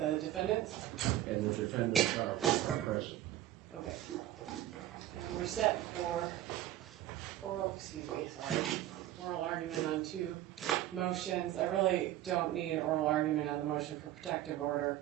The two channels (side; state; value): left; quieter; 13.5 dB